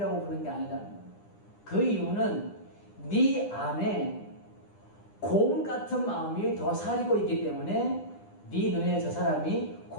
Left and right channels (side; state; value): right; late; 9.9 ms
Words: 부르는 게 아니다. 그 이유는 네 안에 곰 같은 마음이 더 사리고 있기 때문에 네 눈에 저 사람이